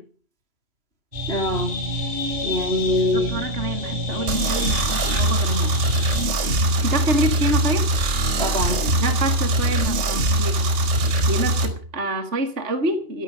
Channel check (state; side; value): late; left; 2.8 ms